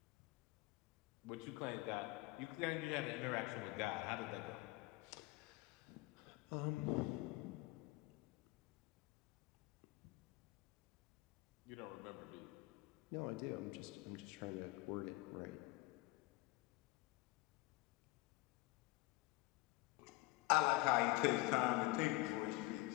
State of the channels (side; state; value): right; quieter; 20.4 dB